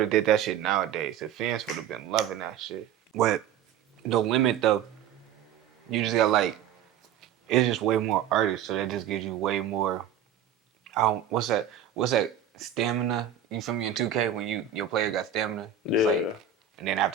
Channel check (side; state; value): left; quieter; 8.7 dB